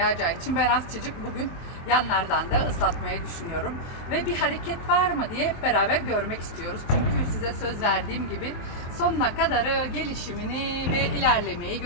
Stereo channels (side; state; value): right; late; 23 ms